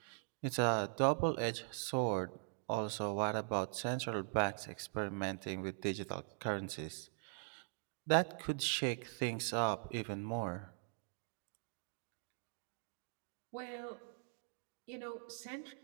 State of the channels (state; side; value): silent; left; 50 dB below the other